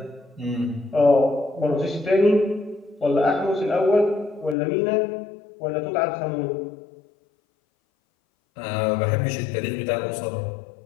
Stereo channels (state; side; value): drops out; right; at 4.5 s